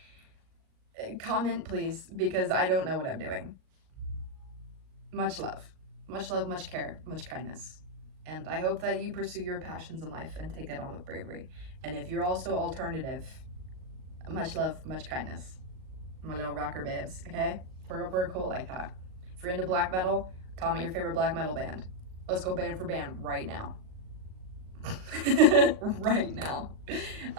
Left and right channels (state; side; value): late; left; 38 ms